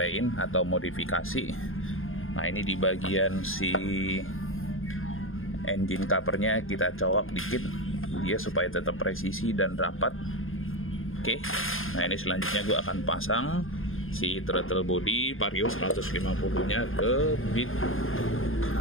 atau modifikasi. Nah ini di bagian si engine covernya kita colok dikit dia supaya tetap presisi dan rapat. Oke, nah ini selanjutnya gue akan pasang si throttle body Vario 150 nya ke bit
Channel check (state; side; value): late; right; 0.60 ms